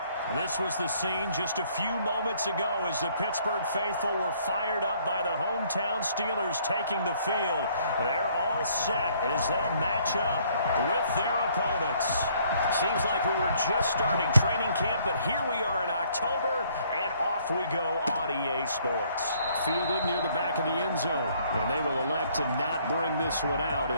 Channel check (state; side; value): inverted; both; correlation -0.63